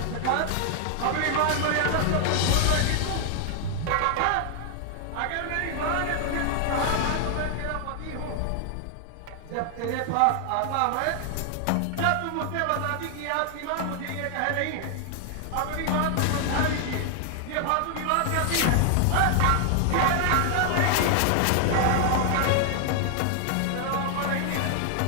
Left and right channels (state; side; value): different; both; correlation 0.00